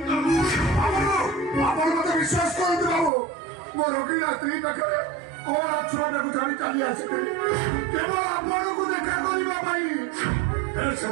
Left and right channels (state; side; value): drops out; left; at 3.1 s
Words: आपण मते विश्वास करंतु बाबू मो रोगी स्त्री पाखे कोन छोटा को जानी चली आसी केवल आपण को देखा करिबा पाई